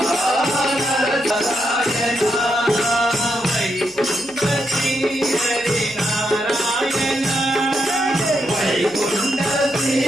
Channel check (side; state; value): right; noise; hum, 27 dB below the sound